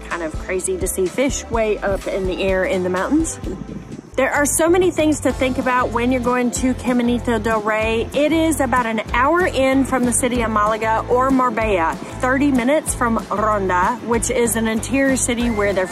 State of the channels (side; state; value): both; identical; correlation 1.00